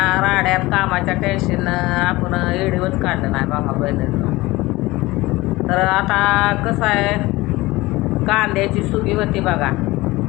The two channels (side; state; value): right; quieter; 20.0 dB